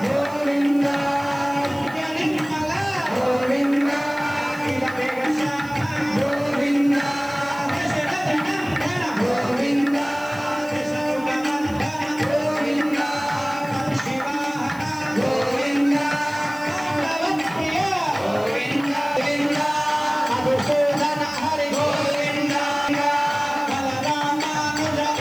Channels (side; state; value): right; noise; hiss, 23 dB below the sound